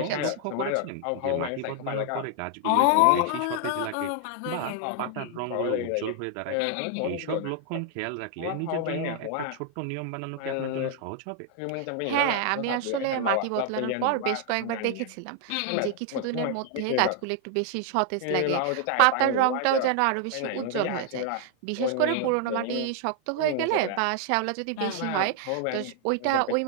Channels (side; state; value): both; different; correlation 0.00